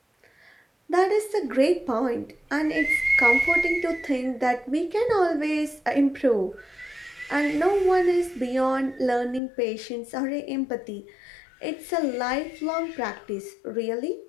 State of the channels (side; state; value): right; drops out; at 9.4 s